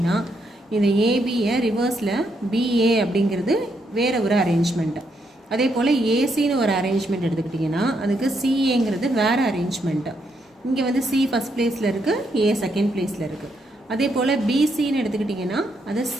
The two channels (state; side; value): normal; both; correlation 0.77